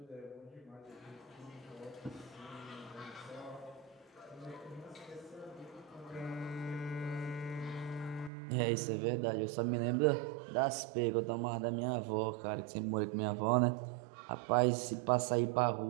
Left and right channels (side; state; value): left; drops out; at 8.3 s